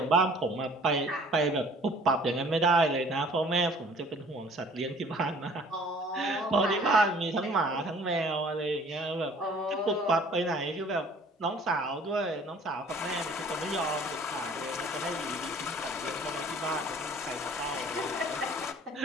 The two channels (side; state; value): both; normal; correlation 0.53